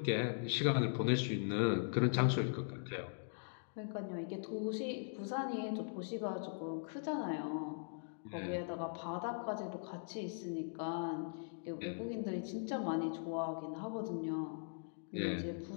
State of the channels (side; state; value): right; silent; digital silence